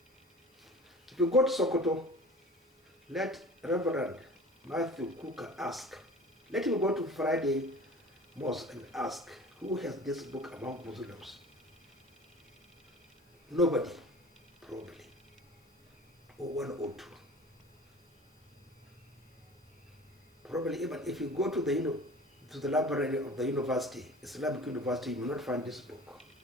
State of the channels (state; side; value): normal; both; correlation 0.42